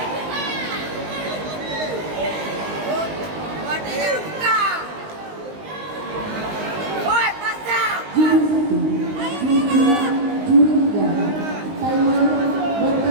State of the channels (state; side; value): late; left; 19 ms